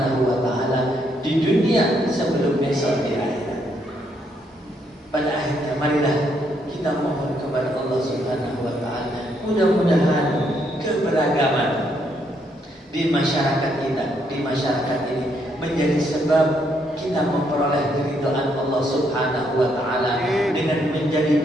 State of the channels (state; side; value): normal; both; correlation 0.74